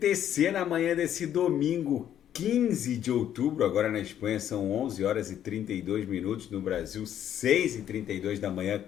na manhã desse domingo, 15 de outubro. Agora na Espanha são 11 horas e 32 minutos, no Brasil 6 e 32 da manhã.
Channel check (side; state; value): right; quieter; 10.5 dB